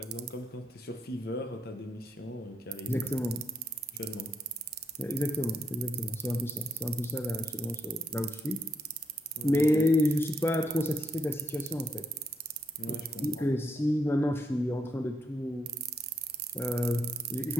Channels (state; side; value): normal; both; correlation 0.78